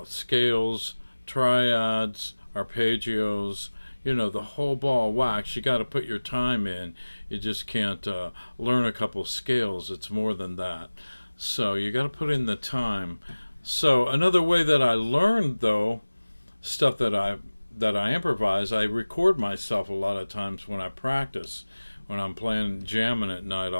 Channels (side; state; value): both; inverted; correlation -1.00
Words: scales, triads, arpeggios, the whole ball of wax. You got to put your time in. You just can't learn a couple scales. It's more than that. So you got to put in the time. So another way that I learned, though, stuff that I improvise, I record myself a lot of times when I practice. When I'm playing jamming at night,